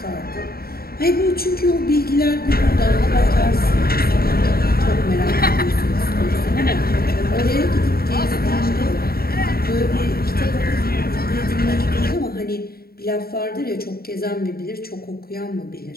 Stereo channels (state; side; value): late; right; 0.44 ms